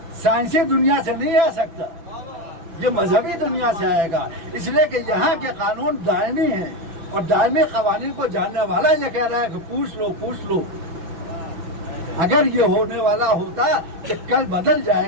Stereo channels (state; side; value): late; left; 6.0 ms